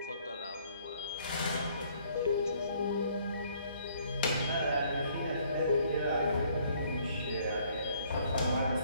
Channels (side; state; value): both; inverted; correlation -0.63